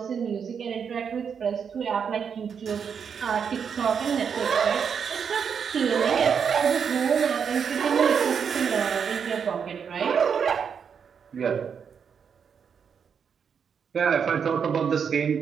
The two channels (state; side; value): quieter; left; 6.9 dB